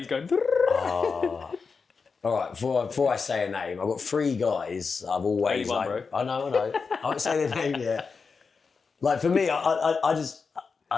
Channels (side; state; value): right; quieter; 5.0 dB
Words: going... All right, before I say a name, I've got three guys I've always Only one, like... bro. I know. I won't say their name yet. Like, for me, I